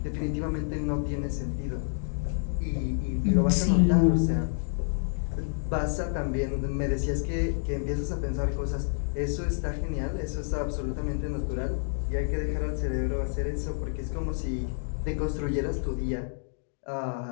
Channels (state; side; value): silent; right; digital silence